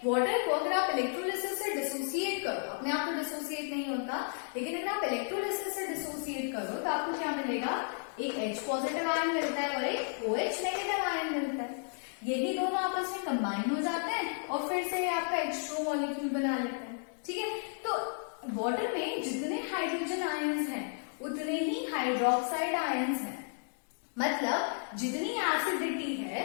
वाटर को अगर आप इलेक्ट्रोलिसिस से डिसोसिएट करो, अपने आप तो डिसोसिएट नहीं होता, लेकिन अगर आप इलेक्ट्रोलिसिस से डिसोसिएट करो तो आपको क्या मिलेगा, एक H पॉजिटिव आयन मिलता है और एक OH नेगेटिव आयन मिलता है। यही दोनों आपस में कंबाइन हो जाते हैं और फिर से आपका H2 मॉलिक्यूल बना लेते हैं। ठीक है, तो वाटर में जितने हाइड्रोजन आयंस हैं उतने ही हाइड्रोक्साइड आयंस हैं, मतलब जितनी एसिडिटी है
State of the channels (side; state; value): right; silent; 56 dB below the other